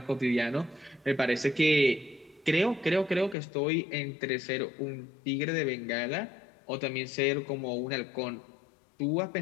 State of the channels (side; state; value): right; drops out; at 3.4 s